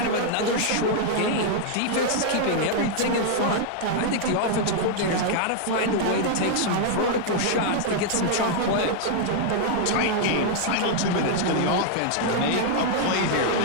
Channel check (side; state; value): both; different; correlation 0.00